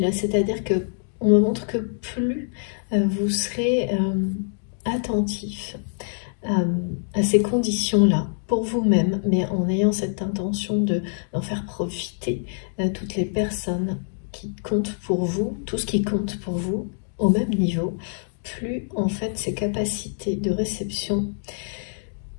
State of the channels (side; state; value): right; silent; digital silence